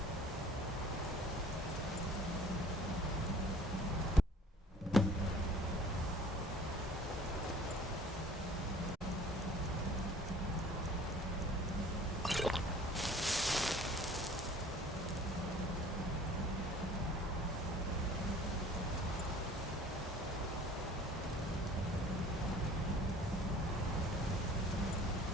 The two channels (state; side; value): normal; both; correlation 0.50